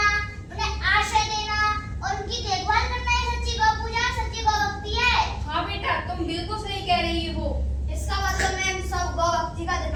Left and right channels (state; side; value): identical; both; correlation 1.00